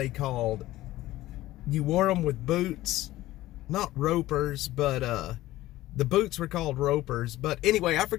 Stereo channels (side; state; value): right; quieter; 16.2 dB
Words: called? You wore them with boots, not ropers, but the boots were called ropers. But anyway, I